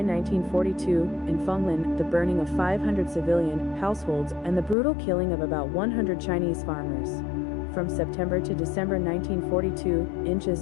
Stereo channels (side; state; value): right; drops out; at 4.8 s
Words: 1942, in Fenglin, the burning of 500 civilian households and the brutal killing of about 100 Chinese farmers. From September to December 1942, inches